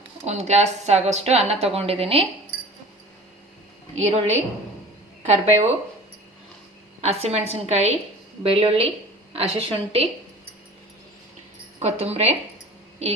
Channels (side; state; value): both; normal; correlation 0.42